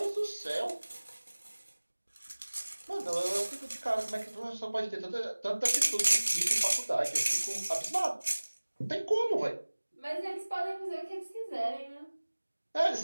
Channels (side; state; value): both; inverted; correlation -1.00